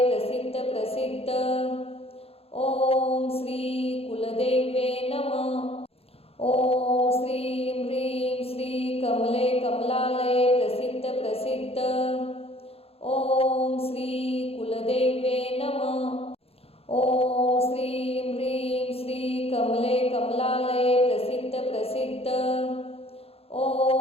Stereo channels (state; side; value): late; right; 0.29 ms